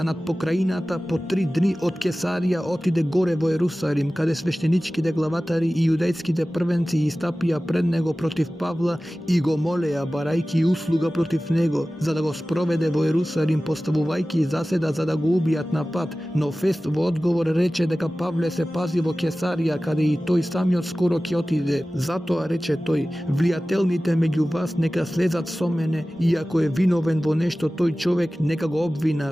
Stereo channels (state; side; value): normal; both; correlation 0.96